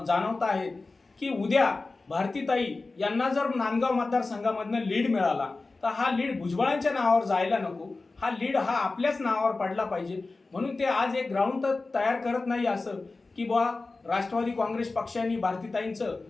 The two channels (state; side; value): quieter; right; 3.6 dB